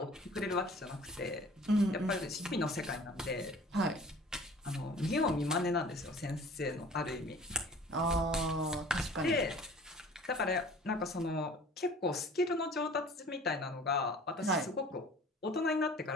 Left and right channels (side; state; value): both; normal; correlation 0.47